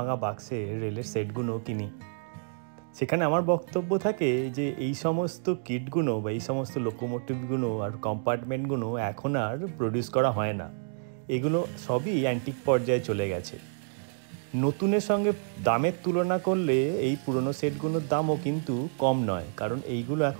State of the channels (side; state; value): left; silent; digital silence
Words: বাক্সে রেলের সেটগুলো কিনি। সেখানে আমার বক্তব্য থাকে যে এই সমস্ত কিটগুলো বা এই সমস্ত লোকোমোটিভগুলো আর কম্পার্টমেন্টগুলো এখন আর প্রডিউস করা হয় না। এগুলো সবই অ্যান্টিক পর্যায়ে চলে গেছে। নতুনের সঙ্গে দামের তুলনা করলে এই পুরনো সেটগুলোর দামও কিন্তু কম নয়, কারণ এইগুলো